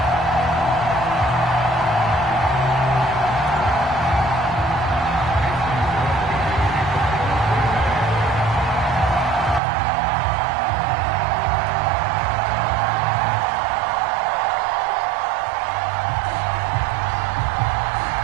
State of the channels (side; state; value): left; drops out; at 9.6 s